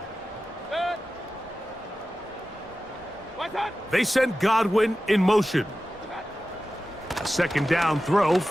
They send Godwin in motion. A 2nd down throw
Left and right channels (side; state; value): both; normal; correlation 0.94